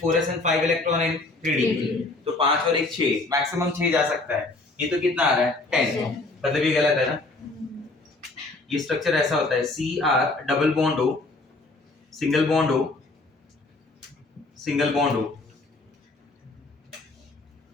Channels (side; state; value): right; quieter; 3.2 dB